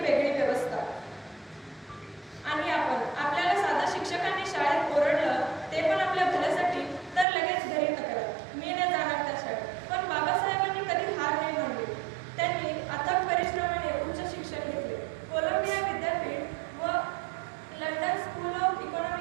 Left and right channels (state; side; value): drops out; left; at 7.2 s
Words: व्यवस्था। आणि आपल्याला साधा शिक्षकांनी शाळेत ओरडलं ते पण आपल्या भल्यासाठी, तर लगेच घरी तक्रार, मी नाही जाणार त्या शाळेत। पण बाबासाहेबांनी कधी हार नाही मानली। त्यांनी अथक परिश्रमाने उच्च शिक्षण घेतले। कोलंबिया विद्यापीठ व लंडन स्कूल ऑफ